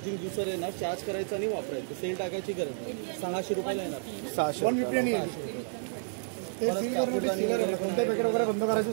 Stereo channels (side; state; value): left; silent; digital silence